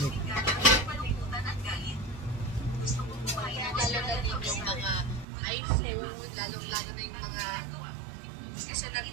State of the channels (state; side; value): drops out; left; at 5.2 s